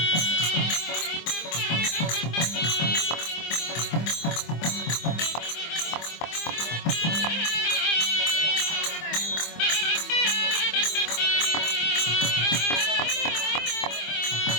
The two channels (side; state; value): right; late; 25 ms